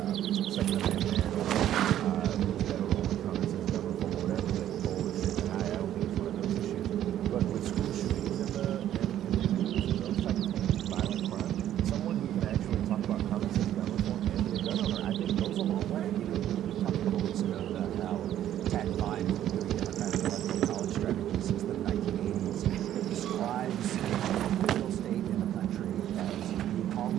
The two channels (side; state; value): left; quieter; 11.7 dB